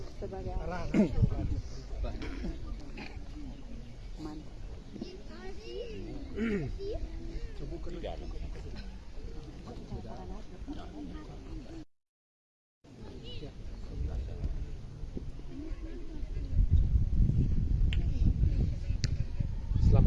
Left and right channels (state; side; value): identical; both; correlation 1.00